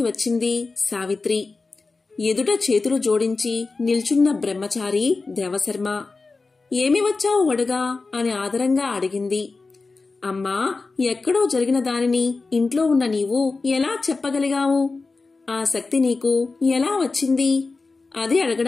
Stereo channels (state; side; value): quieter; right; 3.9 dB